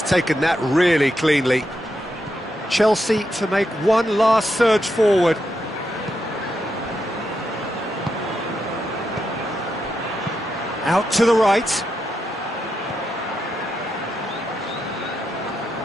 taken that really cleanly. Chelsea to make one last surge forward. Out to the right.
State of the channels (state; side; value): normal; both; correlation 0.84